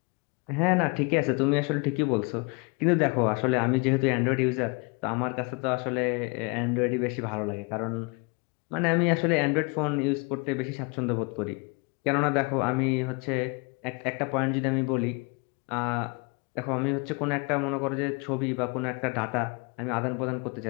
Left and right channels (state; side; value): quieter; right; 30.8 dB